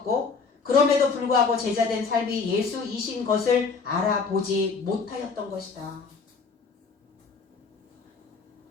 그럼에도 불구하고 제자된 삶이 예수이신 것을 알아보지 못하였던 것이다.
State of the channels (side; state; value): right; quieter; 4.9 dB